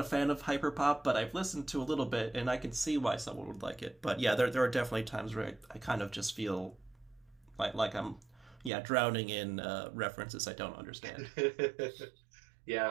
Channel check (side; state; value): left; drops out; at 8.7 s